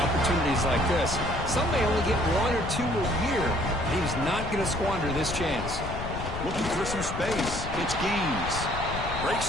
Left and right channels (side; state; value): left; noise; rumble, 7 dB below the sound